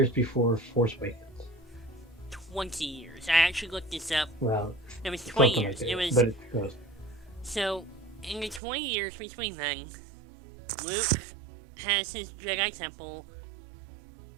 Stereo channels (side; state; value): left; drops out; at 8.6 s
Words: before Force Awakens. 20 years. I actually looked this up. Well, it was 20 years. Like but it goes. So, in the 20 years between then, Luke has his Jedi Temple.